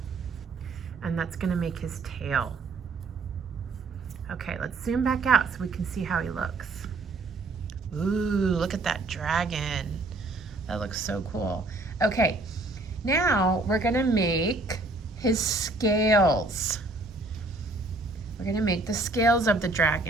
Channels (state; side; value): quieter; left; 3.2 dB